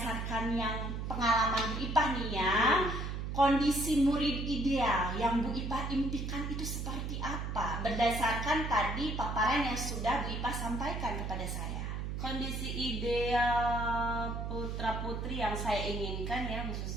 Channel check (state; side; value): noise; right; hum, 4 dB below the sound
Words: yang pengalaman Bu Ipa nih ya, kondisi murid ideal yang Bu Ipa impikan itu seperti apa? Berdasarkan tadi paparan yang sudah Bu Ipa sampaikan kepada saya. Kondisi ideal putra-putri yang saya inginkan ya,